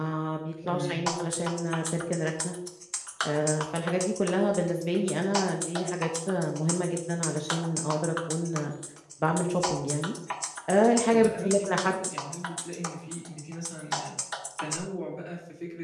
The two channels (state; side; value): identical; both; correlation 1.00